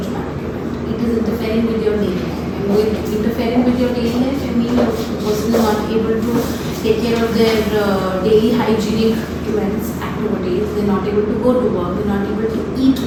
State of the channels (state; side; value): identical; both; correlation 1.00